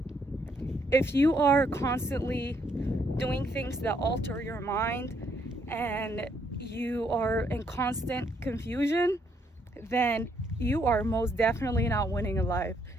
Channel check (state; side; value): normal; both; correlation 0.72